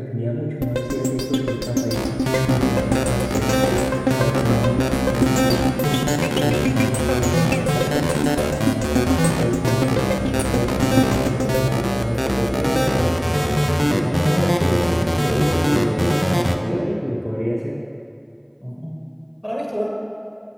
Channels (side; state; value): both; identical; correlation 1.00